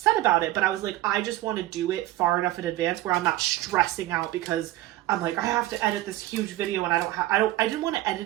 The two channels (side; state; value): left; quieter; 16.1 dB